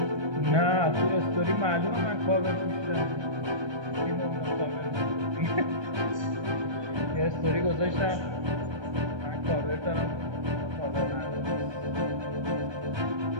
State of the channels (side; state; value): left; late; 1.2 ms